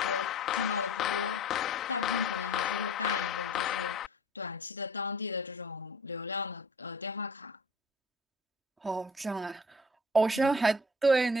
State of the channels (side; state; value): both; normal; correlation 0.46